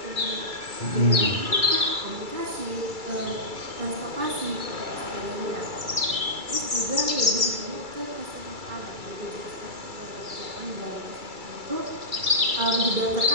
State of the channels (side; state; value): left; late; 2.3 ms